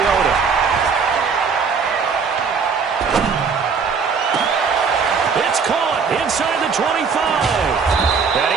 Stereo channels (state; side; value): quieter; left; 5.6 dB